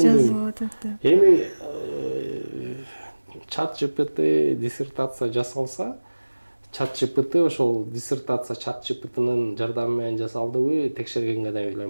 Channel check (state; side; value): inverted; both; correlation -1.00